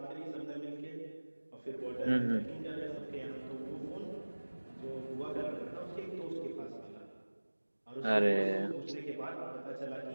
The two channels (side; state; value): both; inverted; correlation -1.00